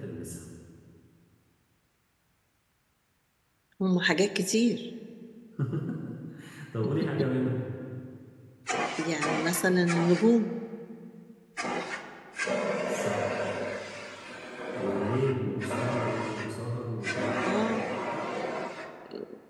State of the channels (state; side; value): identical; both; correlation 1.00